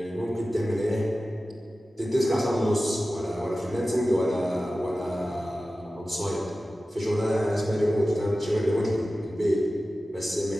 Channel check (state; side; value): normal; both; correlation 0.95